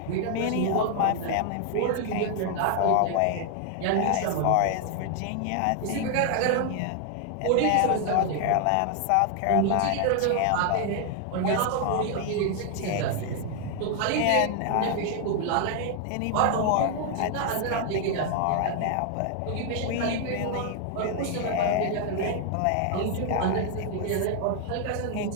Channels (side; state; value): both; different; correlation 0.00